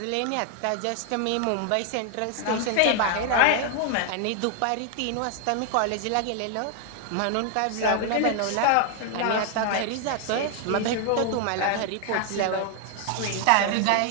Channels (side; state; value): both; different; correlation 0.00